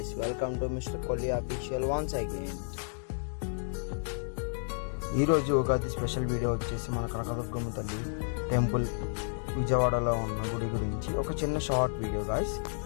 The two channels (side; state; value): right; silent; digital silence